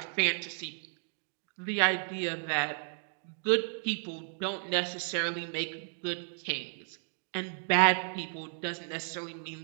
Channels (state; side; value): silent; left; digital silence